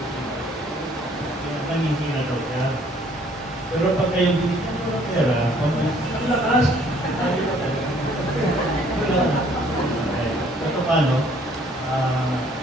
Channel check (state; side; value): normal; both; correlation 0.60